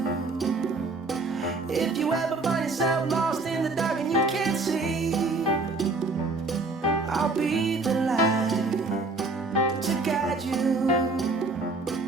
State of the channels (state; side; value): quieter; left; 3.5 dB